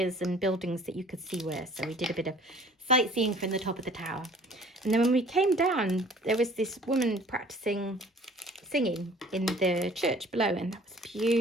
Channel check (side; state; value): both; normal; correlation 0.51